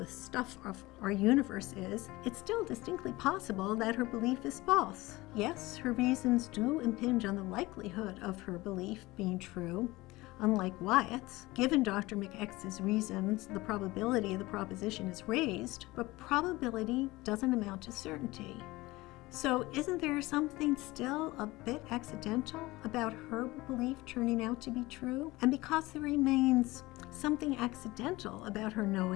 stuff of our universe is, it's still distinctly possible that her belief is false. Yes, her reasons do impinge on the likelihood of her belief being true. Unlike Wyatt's, given Dr. McX's reasons, the probability of the proposition is raised, but probability doesn't amount to certainty. So isn't there something still a bit accidental about her belief turning out to be true? And because there remains something accidental about her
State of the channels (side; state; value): right; quieter; 20.3 dB